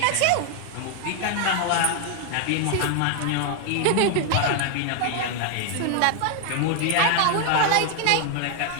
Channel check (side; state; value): both; different; correlation 0.00